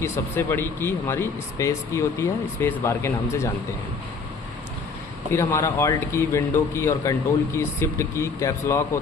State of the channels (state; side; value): quieter; right; 4.6 dB